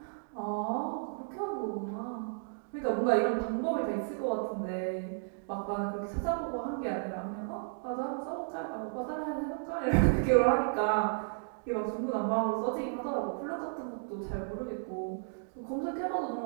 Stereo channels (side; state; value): left; silent; digital silence